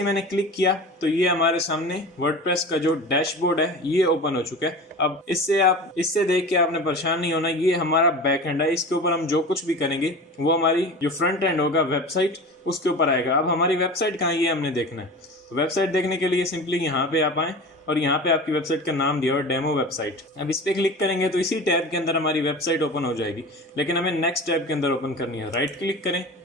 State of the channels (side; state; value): both; normal; correlation 0.34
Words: मैंने क्लिक किया तो ये हमारे सामने वर्डप्रेस का जो डैशबोर्ड है ये ओपन हो चुका है। अब इससे देख के आपने परेशान नहीं होना, ये हमारा बैक एंड है। इसके ऊपर हम जो कुछ भी करेंगे वो हमारी जो फ्रंट एंड होगा वेबसाइट उसके ऊपर आएगा। अब हमारी वेबसाइट कहाँ, ये हमने देखना है। तो वेबसाइट देखने के लिए सिंपली यहाँ पे आप आए और यहाँ पे आपकी वेबसाइट का नाम दिया और डेमो वेबसाइट। अब इस पे क्लिक करेंगे तो इसी टैब के अंदर हमारी वेबसाइट ओपन हो जाएगी, लेकिन हमें नेक्स्ट टैब के अंदर ओपन करनी है। राइट क्लिक करें,